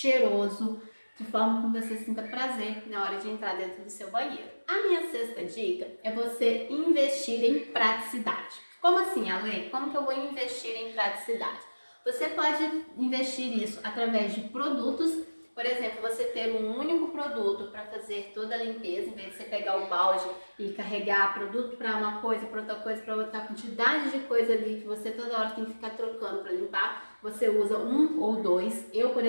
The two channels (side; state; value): both; inverted; correlation -1.00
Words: de forma que você sinta prazer na hora de entrar dentro do seu banheiro. A minha sexta dica é você investir em praticidade. Como assim, Ale? Como que eu vou investir em praticidade? Você pode investir isso através de produtos. Por exemplo, você ter um único produto para fazer toda a limpeza, em vez de você pegar o balde e carregar produto para uma coisa, para outra coisa, para outra quantidade de coisa ali que você toda hora tem que ficar trocando para limpar, você usa um ou dois. Eu, por